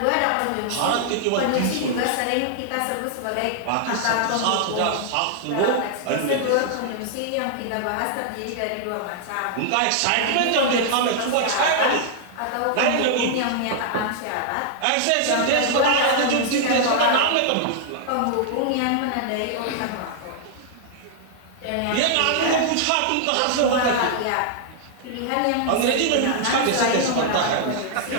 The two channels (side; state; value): both; different; correlation -0.01